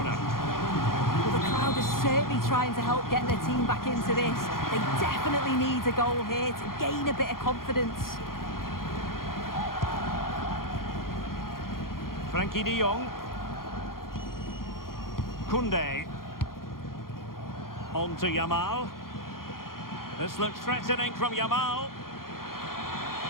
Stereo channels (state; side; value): late; right; 0.92 ms